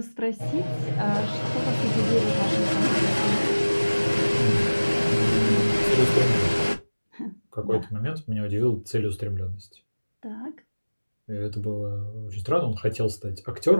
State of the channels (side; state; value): both; inverted; correlation -1.00